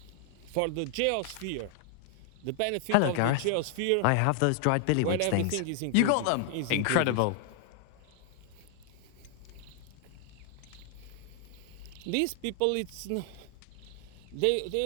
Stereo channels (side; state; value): both; different; correlation 0.00